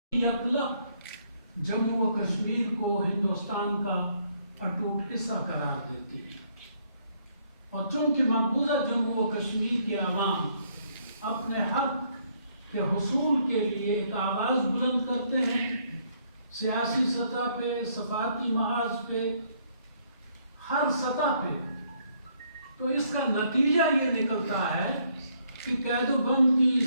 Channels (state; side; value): inverted; both; correlation -0.68